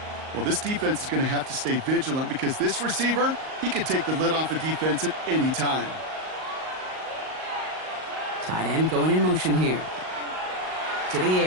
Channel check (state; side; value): late; left; 38 ms